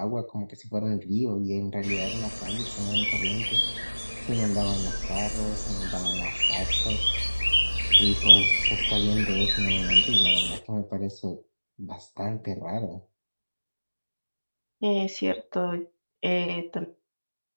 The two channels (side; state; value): both; inverted; correlation -1.00